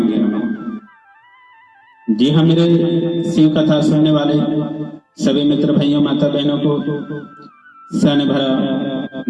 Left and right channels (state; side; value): identical; both; correlation 1.00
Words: नमः। जी हाँ, मेरे शिव कथा सुनने वाले सभी मित्र भाइयों माता बहनों को सन भरा